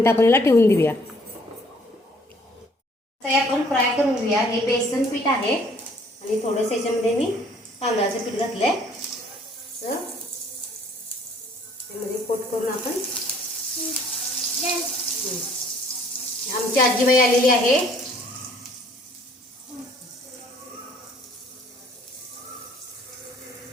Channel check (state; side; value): normal; both; correlation 0.60